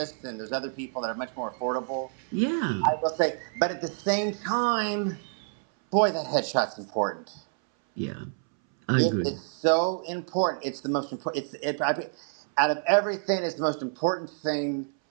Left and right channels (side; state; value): left; silent; 59 dB below the other